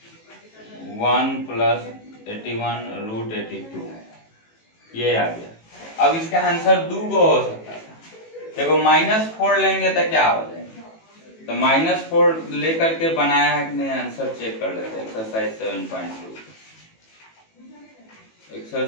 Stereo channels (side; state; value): right; late; 18 ms